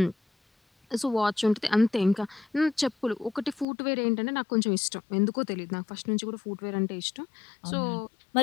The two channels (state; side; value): drops out; right; at 3.7 s